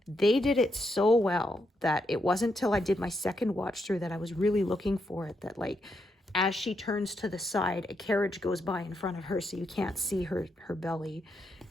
They did it so well that it wasn't till I did my second watch through that I was really looking for it, that like as she turns to the side, a carriage goes by in front of her so you can't see her belly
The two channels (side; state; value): both; normal; correlation 0.80